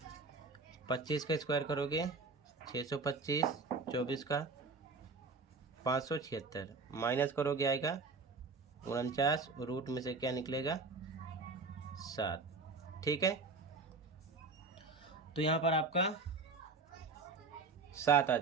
25 का स्क्वायर करोगे 625, 24 का 576, माइनस करोगे आएगा 49, रूट में से क्या निकलेगा 7, ठीक है। तो यहाँ पर आपका 7 आ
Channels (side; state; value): left; quieter; 4.0 dB